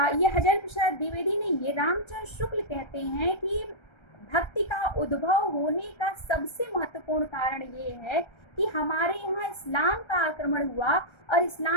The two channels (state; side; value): late; right; 1.3 ms